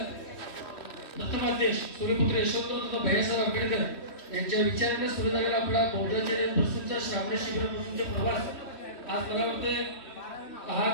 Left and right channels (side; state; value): right; late; 3.1 ms